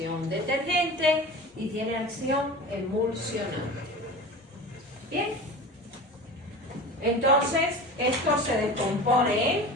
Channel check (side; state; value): both; normal; correlation 0.33